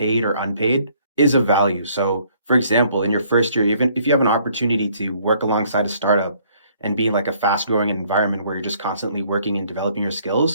or unpaid, is of value. So, for example, in your first year, even if you have an opportunity to work alongside a startup and be in like a fast growing environment where you're just constantly working and developing your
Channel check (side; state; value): both; inverted; correlation -0.63